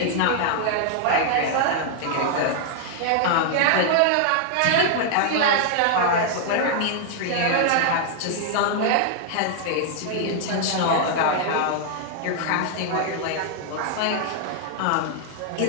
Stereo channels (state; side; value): different; both; correlation 0.00